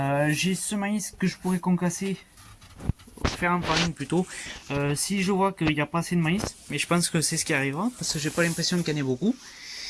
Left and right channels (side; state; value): both; identical; correlation 1.00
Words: J'ai ce maïs que je pourrais concasser, faire en farine plutôt. Si je vois qu'il n'y a pas assez de maïs, mais je pense que c'est ce qui arrivera, parce que j'ai pas l'impression qu'il y en ait beaucoup.